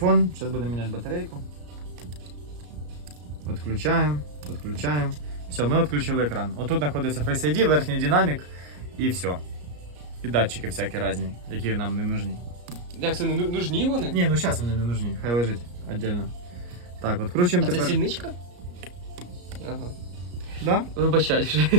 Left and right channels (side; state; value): left; late; 34 ms